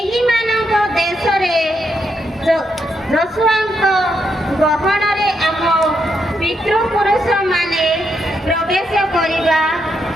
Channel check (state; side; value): normal; both; correlation 0.80